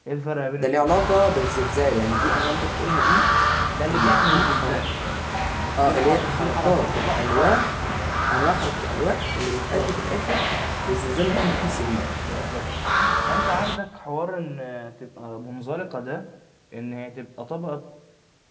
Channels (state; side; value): identical; both; correlation 1.00